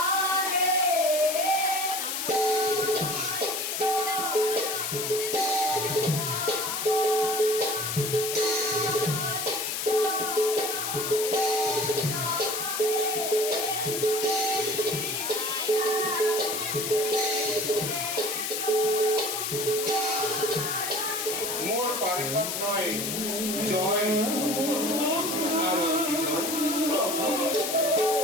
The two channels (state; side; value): noise; left; hiss, 2 dB below the sound